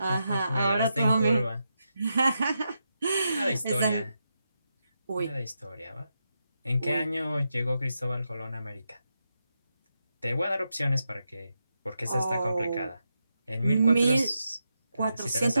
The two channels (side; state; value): both; inverted; correlation -0.85